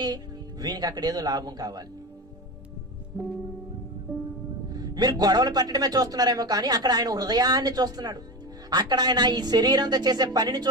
వీనికి అక్కడ ఏదో లాభం కావాలి. మీరు గొడవలు పెట్టడమే చూస్తున్నారేమో కానీ అక్కడ ఆయన హృదయాన్ని చూస్తున్నాడు, అక్కడ ఆయన ఈ శరీరంతో చేసే పనిని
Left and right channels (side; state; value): both; normal; correlation 0.23